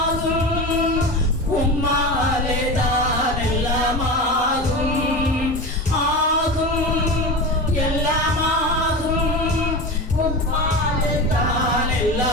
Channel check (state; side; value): normal; both; correlation 0.26